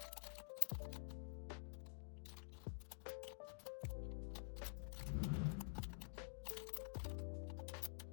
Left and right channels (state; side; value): silent; right; digital silence